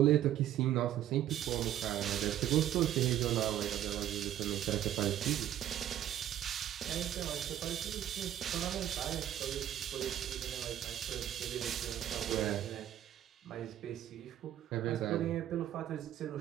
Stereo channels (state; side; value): quieter; left; 11.7 dB